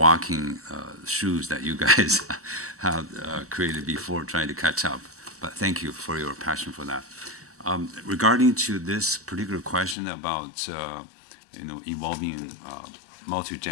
shoes that you guys have created before, trying to catch up. But thank you for your passion for that. Regarding to this particular question about involving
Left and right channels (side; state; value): right; drops out; at 10.0 s